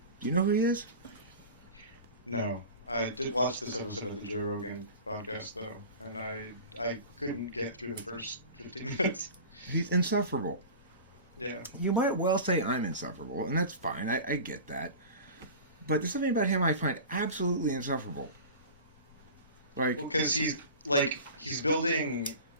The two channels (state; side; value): inverted; both; correlation -0.34